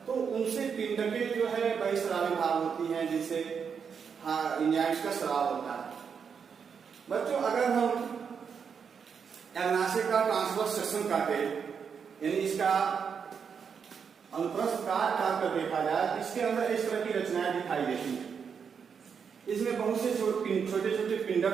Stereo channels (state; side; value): quieter; left; 6.6 dB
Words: तो उनसे पिंडकें जो है बहिःस्रावी भाग होती हैं, जिससे एंजाइम्स का स्राव होता है। बच्चों, अगर हम अग्नाशय का ट्रांसवर्स सेक्शन काटे, यानी इसका अनुप्रस्थ काट कर देखा जाए तो इसके अंदर इस तरह की रचनाएं दिखाई देती हैं। इसमें बहुत से छोटे छोटे